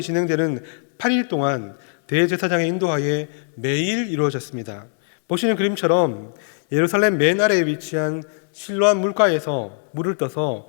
진행되는 8일 동안 대제사장의 인도하에 매일 이루어졌습니다. 보시는 그림처럼 예루살렘 맨 아래에 위치한 실로암 물가에서 물을 떠서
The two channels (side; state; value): right; silent; 62 dB below the other